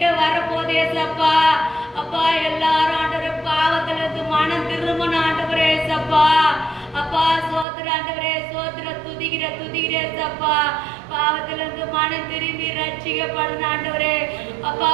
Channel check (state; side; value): drops out; left; at 7.7 s